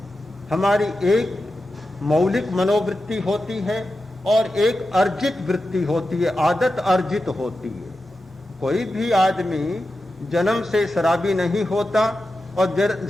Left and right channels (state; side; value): normal; both; correlation 0.91